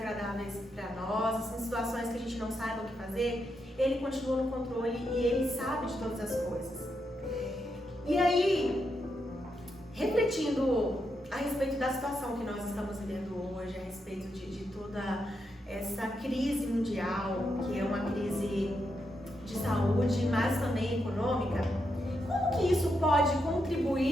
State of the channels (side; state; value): both; normal; correlation 0.83